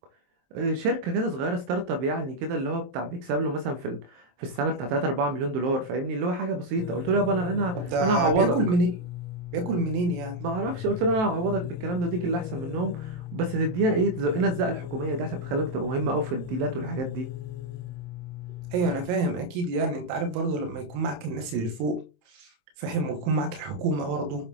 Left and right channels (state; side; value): late; left; 23 ms